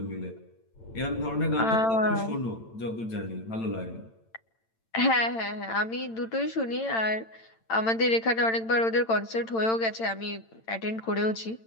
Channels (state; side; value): late; right; 8.9 ms